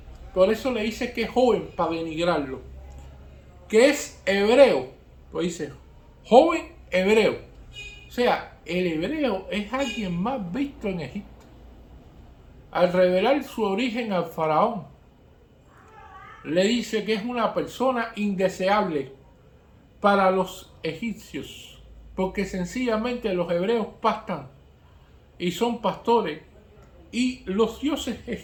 Por eso le dice que es joven, para denigrarlo. Que es hebreo, pues dice joven hebreo. O sea, el hebreo es alguien más visto en Egipto. Al revelar su origen al faraón, le dice que es una persona indeseable para los egipcios, porque sencillamente los hebreos pastan y son pastores, y los dioses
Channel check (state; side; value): identical; both; correlation 1.00